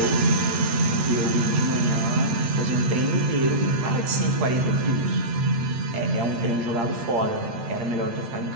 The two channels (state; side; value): late; left; 8.7 ms